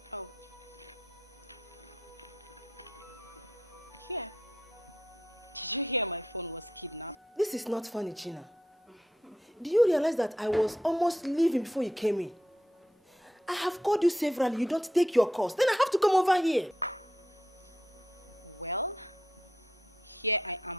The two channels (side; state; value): both; normal; correlation 0.81